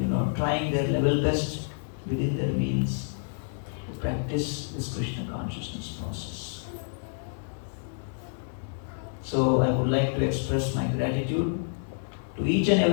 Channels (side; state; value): right; silent; digital silence